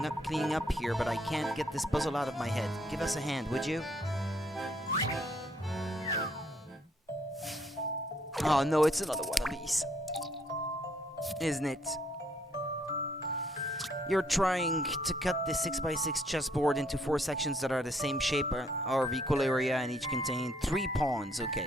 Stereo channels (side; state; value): both; normal; correlation 0.68